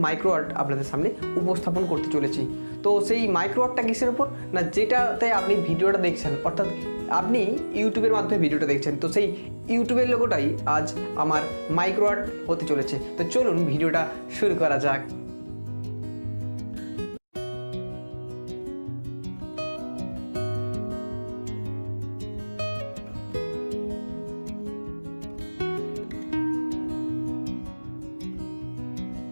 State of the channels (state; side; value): inverted; both; correlation -1.00